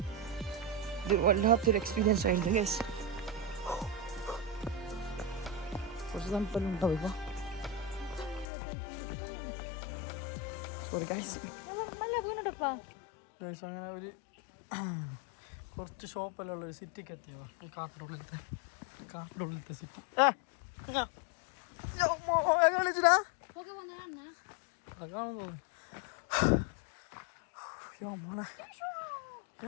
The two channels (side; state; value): right; drops out; at 8.5 s